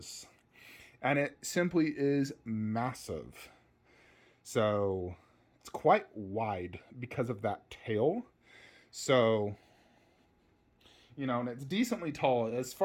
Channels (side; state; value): both; identical; correlation 1.00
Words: And it simply is massive. So it's quite wide because of that tail. So, you know, and it's decently tall. As